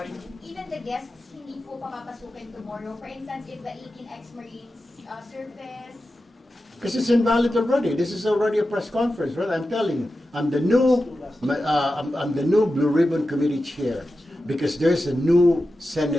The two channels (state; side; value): normal; both; correlation 0.92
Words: Even the guests, hindi po papapasukin tomorrow. For instance, if the 18 ex-Marines surface, Because it's invalid already. This is already a press conference, right? I'm telling you, I'm the new Blue Ribbon Committee chair because there's a new